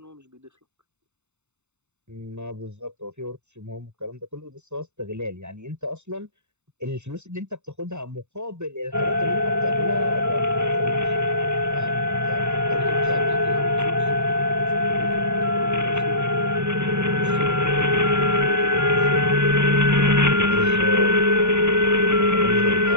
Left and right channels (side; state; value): left; late; 0.82 ms